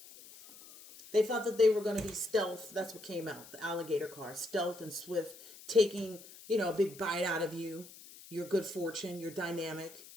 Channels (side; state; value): left; noise; hiss, 18 dB below the sound